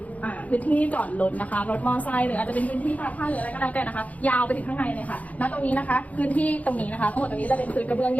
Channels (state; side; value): late; right; 0.072 ms